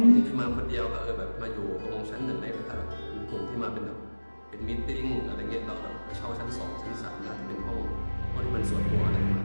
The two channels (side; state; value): both; inverted; correlation -1.00